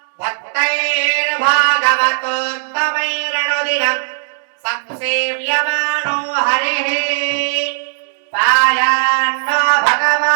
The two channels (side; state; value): left; silent; digital silence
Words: भक्तैर्भागवतोत्तमैरनुदिनम् संसेव्यमानो हरिः पायान्नो